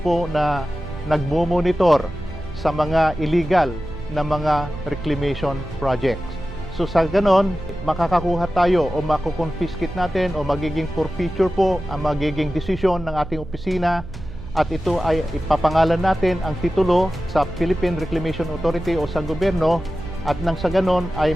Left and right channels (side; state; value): right; noise; hum, 12 dB below the sound